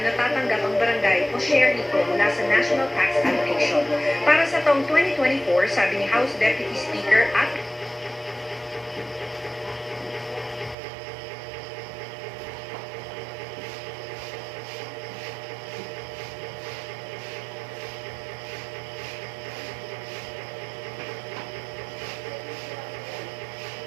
natatanggap ang barangay o share nito mula sa National Tax Allocation. Para sa taong 2024, sabi ni House Deputy Speaker at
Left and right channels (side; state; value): left; drops out; at 10.8 s